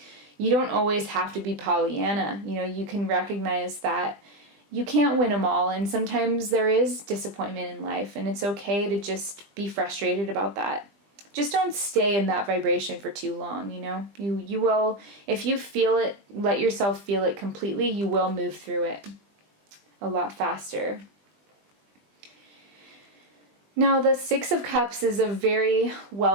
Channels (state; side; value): late; left; 20 ms